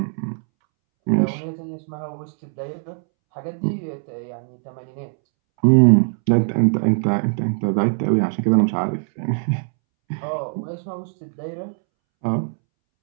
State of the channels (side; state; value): left; silent; 64 dB below the other